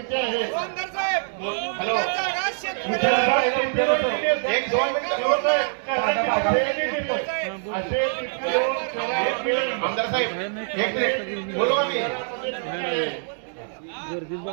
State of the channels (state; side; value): silent; left; digital silence